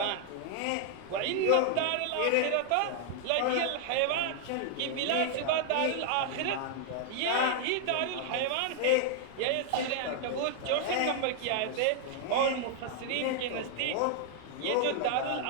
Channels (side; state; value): both; different; correlation 0.00